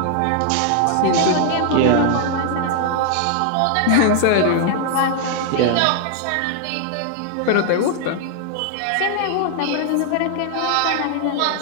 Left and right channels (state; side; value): different; both; correlation 0.00